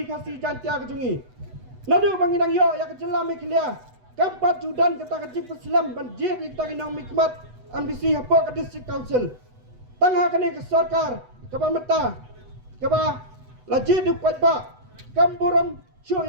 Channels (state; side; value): late; left; 8.0 ms